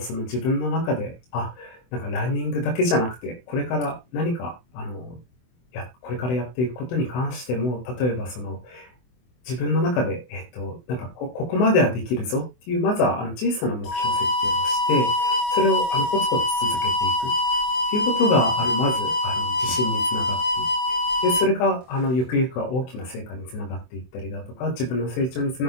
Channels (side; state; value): right; late; 24 ms